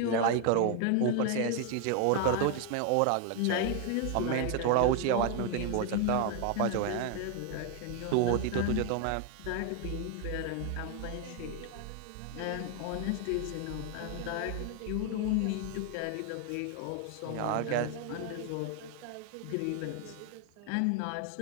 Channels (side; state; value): both; different; correlation 0.01